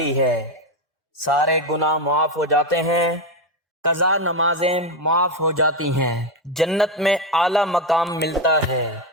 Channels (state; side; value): normal; both; correlation 0.10